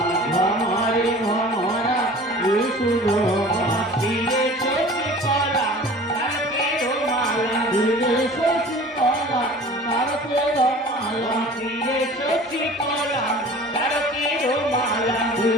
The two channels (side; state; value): both; normal; correlation 0.43